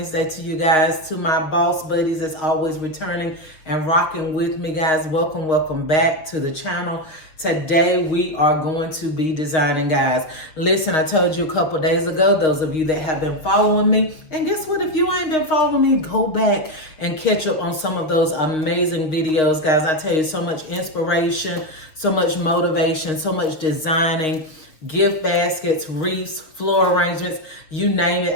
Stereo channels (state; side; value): late; right; 6.6 ms